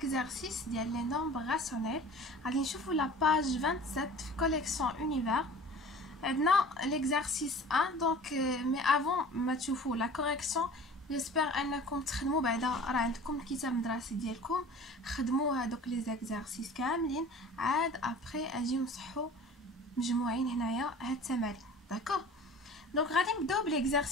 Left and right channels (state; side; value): normal; both; correlation 0.43